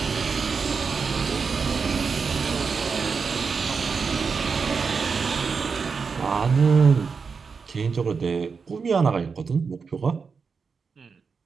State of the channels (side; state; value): left; quieter; 5.3 dB